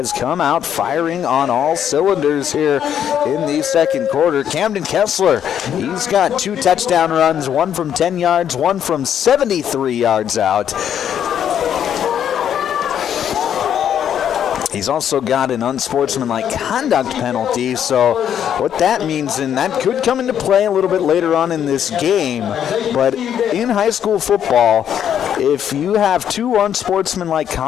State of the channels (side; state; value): right; quieter; 9.3 dB